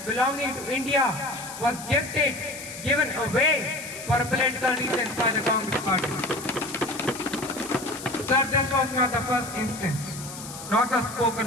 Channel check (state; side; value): noise; left; hiss, 12 dB below the sound